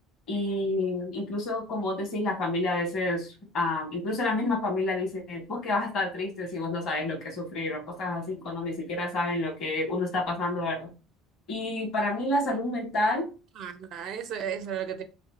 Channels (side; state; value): both; normal; correlation 0.45